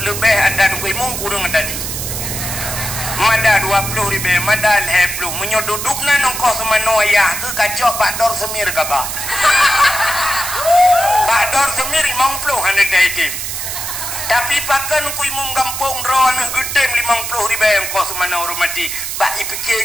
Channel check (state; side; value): noise; right; hiss, 5 dB below the sound